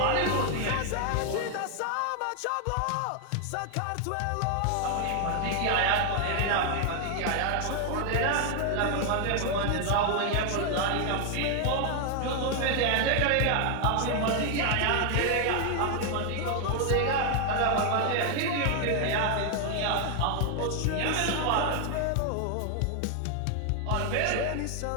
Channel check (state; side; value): different; both; correlation 0.00